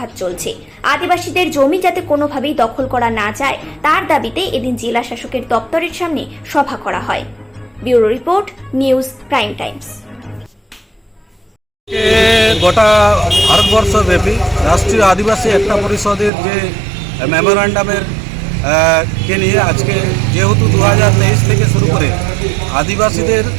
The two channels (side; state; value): left; drops out; at 16.3 s